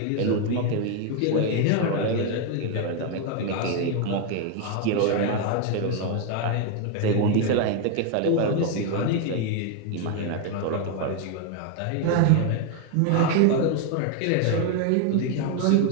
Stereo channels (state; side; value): different; both; correlation 0.01